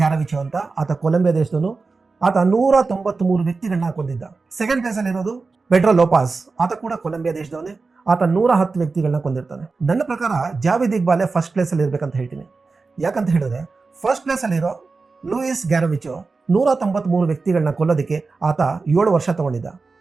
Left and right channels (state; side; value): quieter; left; 4.1 dB